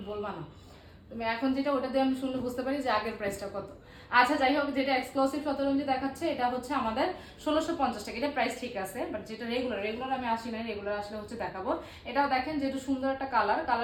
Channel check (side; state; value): both; identical; correlation 1.00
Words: বলবা না? তুমি এখন যেটা, ওটা দিয়ে আমি শুনলে বুঝতে পারি যে আগের প্রাইসটা কত। আচ্ছা যাই হোক, যেটা এক্সক্লুসিভ শতরঞ্জি দেখাচ্ছে এটা হচ্ছে আমাদের 1650 টাকা। এটা প্রাইস ঠিক আছে, বাট যেটা রেগুলার, রেগুলার আমি আসি নাই, রেগুলার আসলে হচ্ছে দেখাবো। এটাও দেখেন যেটা সুন্দর একটা কালার,